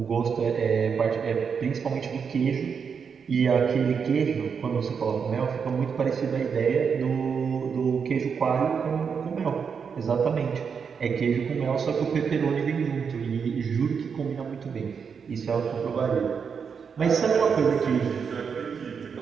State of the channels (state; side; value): quieter; left; 6.3 dB